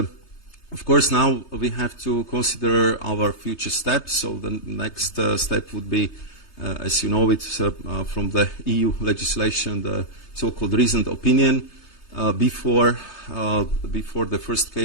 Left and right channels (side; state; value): right; late; 3.3 ms